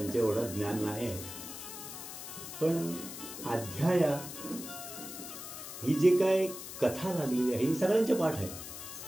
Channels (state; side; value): noise; left; hiss, 10 dB below the sound